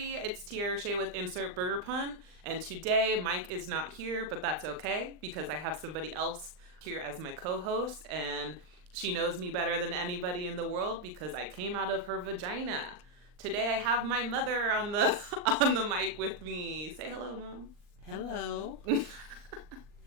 it's Tiara Shea with Insert Burger Pun, and today Mike is not here, but that's okay because I have somebody else here as my co-host, and she knows me better than anybody in the world because I came out of her vagina. Today I have my mother on the on the mic with me. Say hello, Mom. Hello.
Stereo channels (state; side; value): late; left; 39 ms